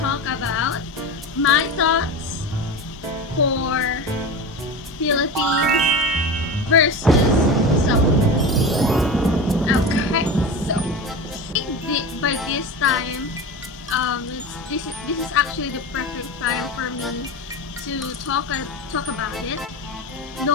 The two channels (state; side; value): normal; both; correlation 0.26